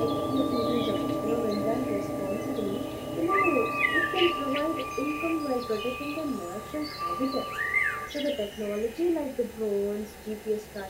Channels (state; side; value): identical; both; correlation 1.00